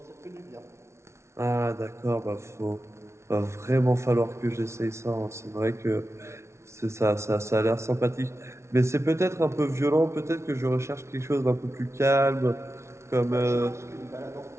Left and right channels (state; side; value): late; left; 0.13 ms